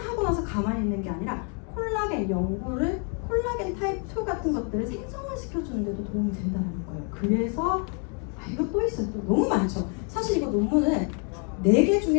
나서 가만히 있는 게 아니라 콜라겐 연골을, 콜라겐 타입 2 같은 것들을 생성을 시켜주는 데도 도움이 된다는 거예요. 그래서 이거 또 있어요. 또 너무 많죠. 사실 이거 논문은 4개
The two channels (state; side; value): quieter; right; 39.7 dB